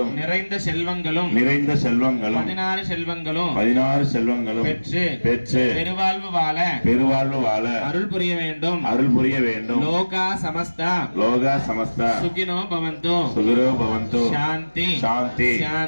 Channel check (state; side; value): inverted; both; correlation -1.00